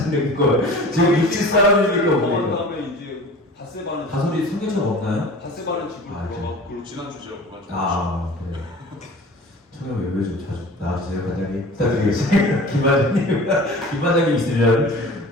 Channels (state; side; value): normal; both; correlation 0.41